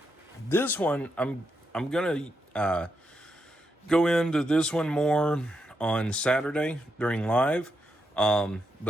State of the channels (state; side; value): normal; both; correlation 0.83